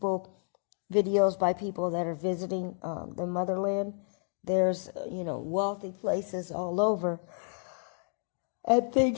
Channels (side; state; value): right; silent; 56 dB below the other